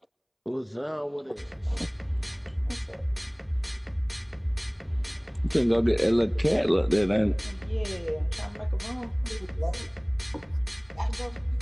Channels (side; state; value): both; identical; correlation 1.00